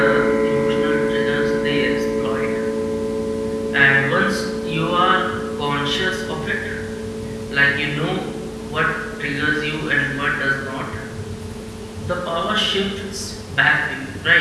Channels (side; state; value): both; identical; correlation 1.00